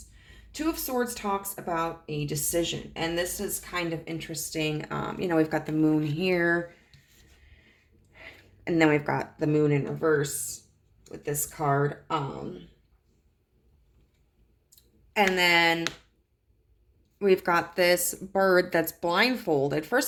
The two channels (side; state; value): both; identical; correlation 1.00